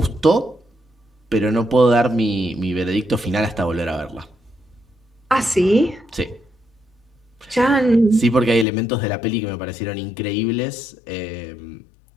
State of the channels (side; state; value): right; drops out; at 8.7 s